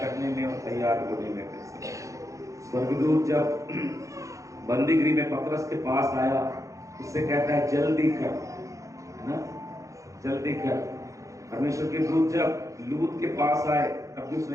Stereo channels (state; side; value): late; left; 0.15 ms